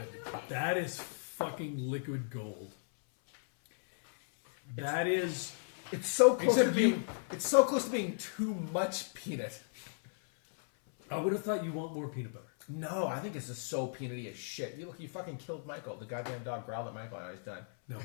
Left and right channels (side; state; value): right; silent; 54 dB below the other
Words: that is fucking liquid gold. That is. It's so close Except to being. It's so close to being too much peanut. I would have thought you want more peanut butter. No, I think it's just so peanutty as shit. You look, you fucking killed Michael. The goddamn dog growled at Michael, and he's done. No,